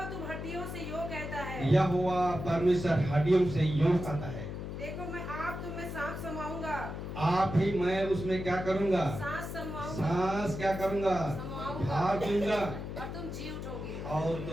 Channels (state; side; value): noise; left; hum, 7 dB below the sound